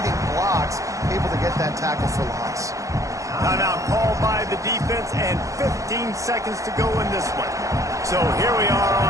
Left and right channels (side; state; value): left; late; 0.16 ms